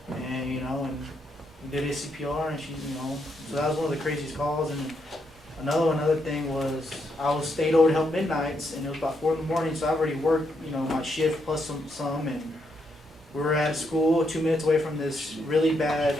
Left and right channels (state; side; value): normal; both; correlation 0.78